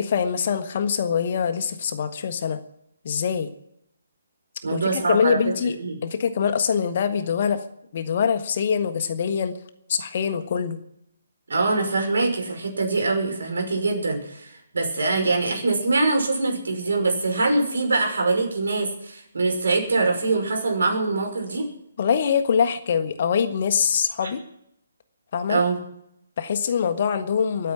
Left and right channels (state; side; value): inverted; both; correlation -0.75